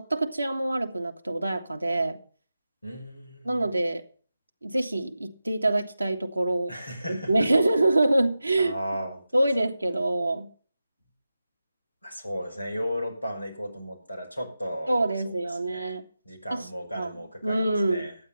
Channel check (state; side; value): inverted; both; correlation -0.92